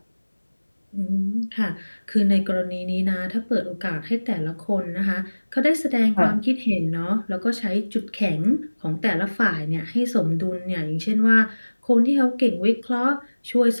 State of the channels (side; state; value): both; inverted; correlation -1.00